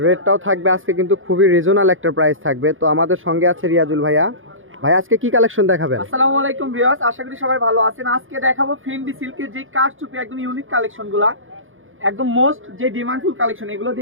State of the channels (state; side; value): late; left; 0.59 ms